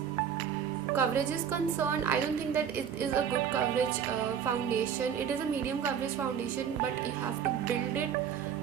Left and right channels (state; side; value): quieter; left; 8.2 dB